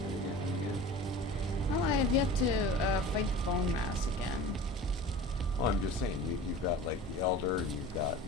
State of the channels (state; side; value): normal; both; correlation 0.38